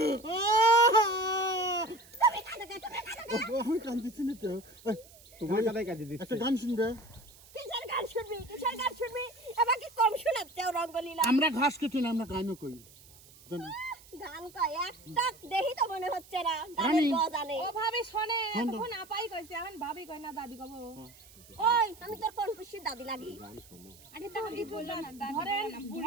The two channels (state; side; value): noise; right; hiss, 23 dB below the sound